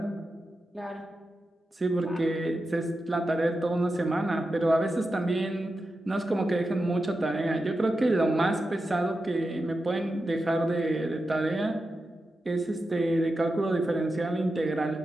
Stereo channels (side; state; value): both; normal; correlation 0.90